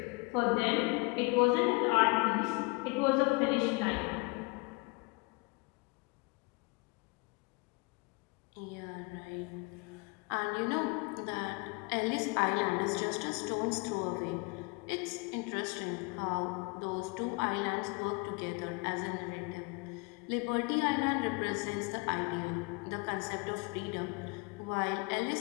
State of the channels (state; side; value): quieter; right; 28.7 dB